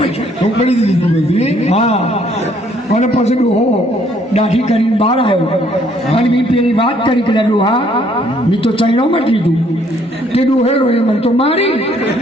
ચોપડી દીધી બધી. હા અને પછી ડોહો દાઢી કરીને બહાર આવ્યો અને મેં પેલી વાત કરી કે ડોહા મેં તો ચાઇનામાં જ લીધું તે ડોહે રોયો મને તો મારી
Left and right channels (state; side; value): normal; both; correlation 0.65